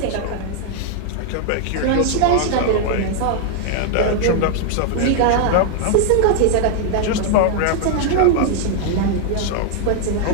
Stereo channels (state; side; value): different; both; correlation 0.00